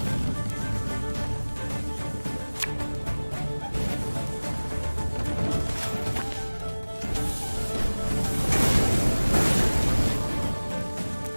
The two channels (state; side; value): inverted; both; correlation -1.00